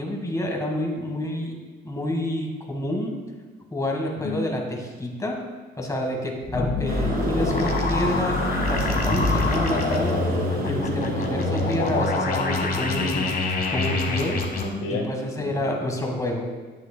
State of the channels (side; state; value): both; normal; correlation 0.50